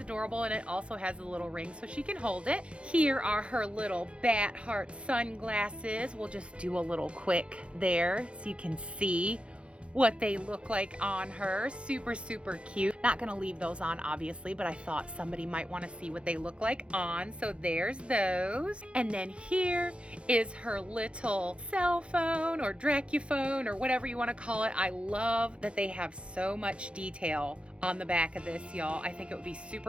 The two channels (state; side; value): late; left; 0.059 ms